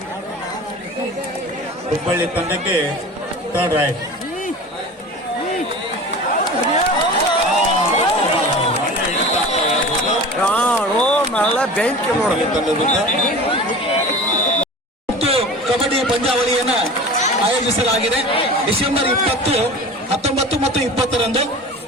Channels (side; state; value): both; normal; correlation 0.36